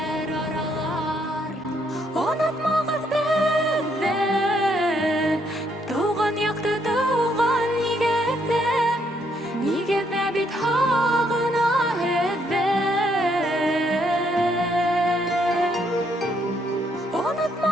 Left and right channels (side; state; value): both; normal; correlation 0.72